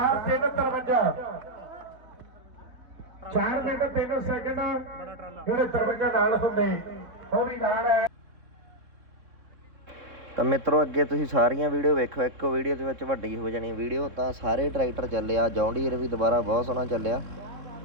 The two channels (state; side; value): late; left; 3.6 ms